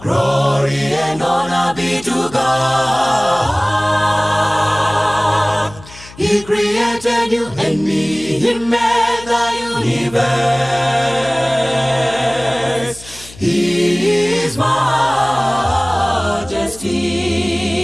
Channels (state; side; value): noise; left; hum, 20 dB below the sound